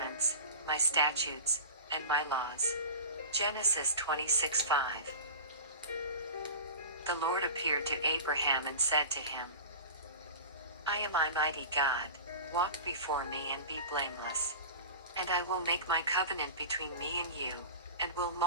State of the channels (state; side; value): inverted; both; correlation -0.32